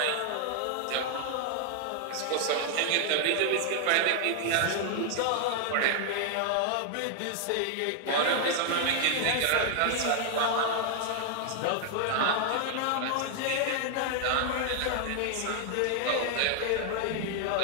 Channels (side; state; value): both; different; correlation 0.00